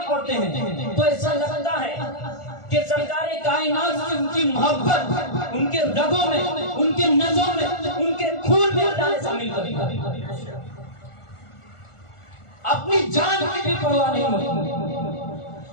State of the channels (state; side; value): late; right; 1.4 ms